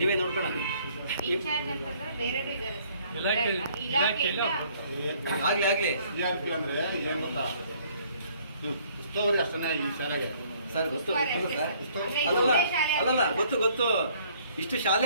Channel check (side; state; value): both; inverted; correlation -0.61